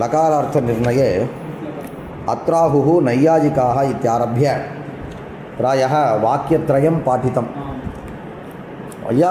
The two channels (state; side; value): identical; both; correlation 1.00